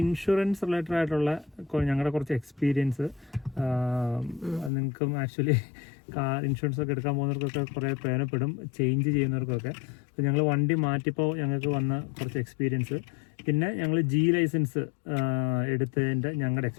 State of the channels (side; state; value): right; drops out; at 4.7 s